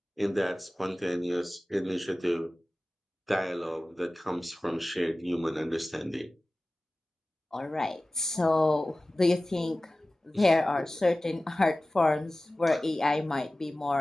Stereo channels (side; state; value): both; normal; correlation 0.97